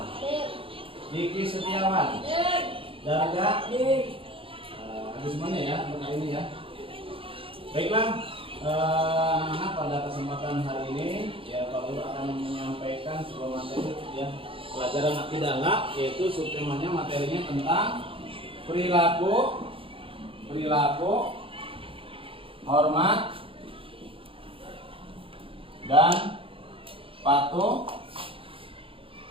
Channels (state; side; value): late; left; 0.26 ms